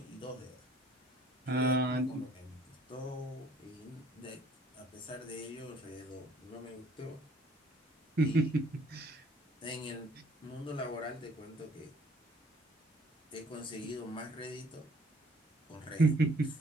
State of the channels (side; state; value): both; normal; correlation 0.58